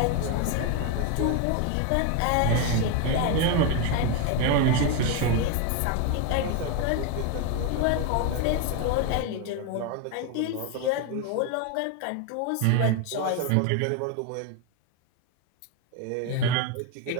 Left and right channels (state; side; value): different; both; correlation 0.01